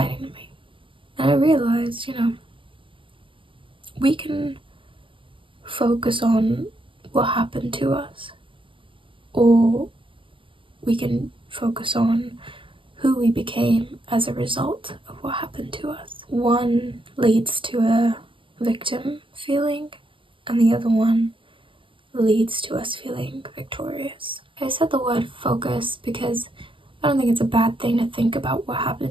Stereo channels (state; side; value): late; left; 0.25 ms